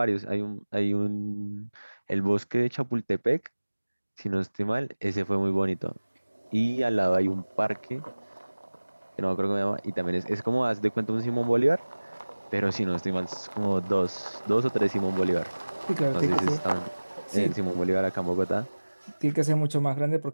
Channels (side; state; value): both; inverted; correlation -1.00